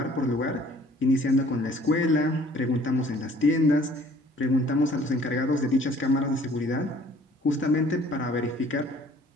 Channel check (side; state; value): both; normal; correlation 0.55